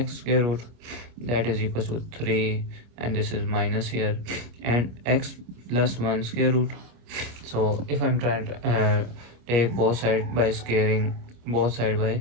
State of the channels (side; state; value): left; late; 25 ms